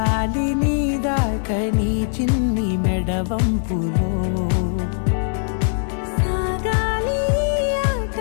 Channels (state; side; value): silent; right; 65 dB below the other